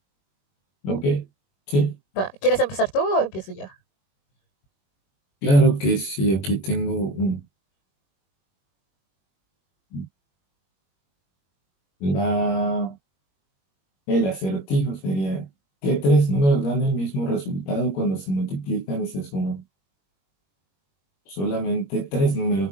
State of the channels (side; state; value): right; late; 21 ms